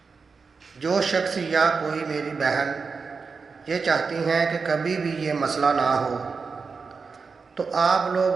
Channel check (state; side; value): quieter; left; 4.9 dB